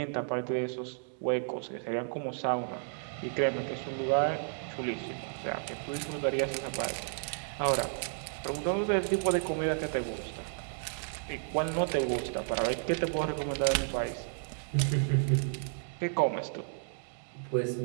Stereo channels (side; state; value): left; silent; digital silence